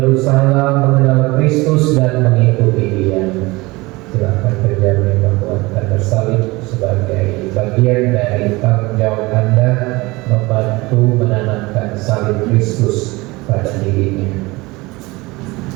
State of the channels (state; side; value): quieter; left; 22.5 dB